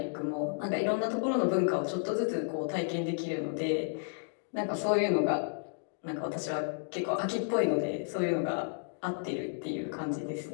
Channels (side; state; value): right; silent; digital silence